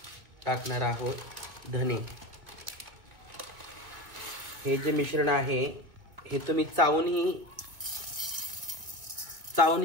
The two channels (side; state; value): left; late; 1.8 ms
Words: टाकणार आहोत धने। हे जे मिश्रण आहे हे तुम्ही चावूनही